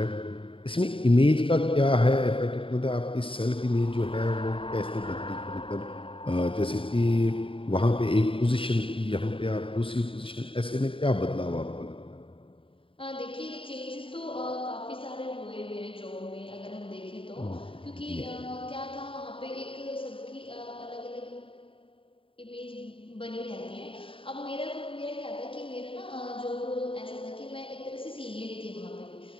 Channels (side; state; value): right; late; 0.26 ms